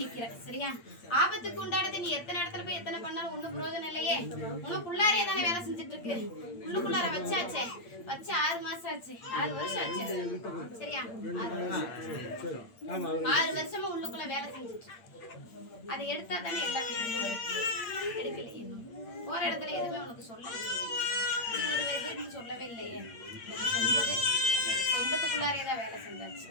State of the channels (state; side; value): late; right; 8.7 ms